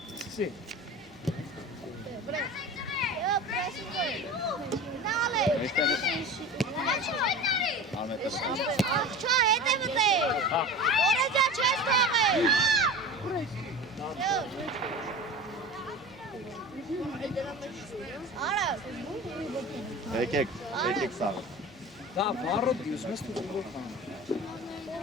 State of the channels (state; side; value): normal; both; correlation 0.34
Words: Եկեք սա։ Դա վառոդ դիուսում ես դու ուղղ խան։